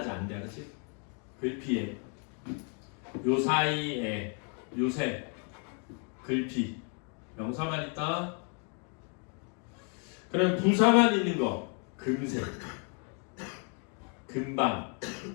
안 돼, 알았지? 글피에 요사이에 요새 글피 명사만 있다. 그럼 부사만 있는 거 금세, 금방,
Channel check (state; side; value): quieter; right; 39.6 dB